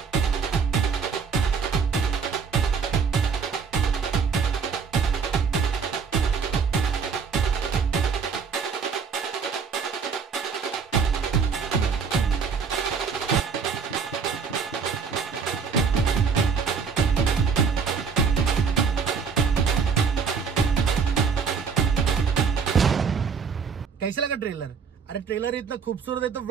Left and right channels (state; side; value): quieter; left; 5.8 dB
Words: कैसा लगा ट्रेलर? अरे ट्रेलर इतना खूबसूरत है तो